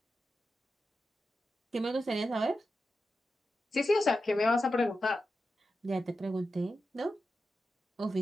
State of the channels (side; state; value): both; normal; correlation 0.90